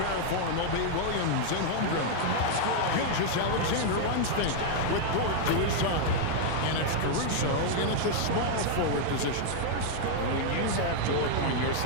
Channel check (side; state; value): both; different; correlation 0.00